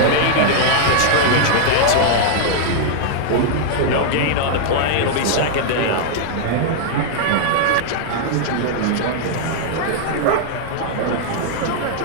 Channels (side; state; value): both; different; correlation -0.01